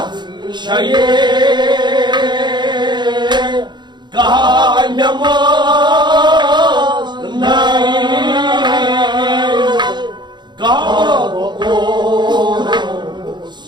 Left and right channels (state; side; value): late; left; 0.21 ms